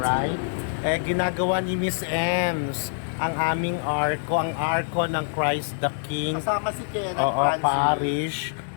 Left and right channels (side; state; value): right; silent; digital silence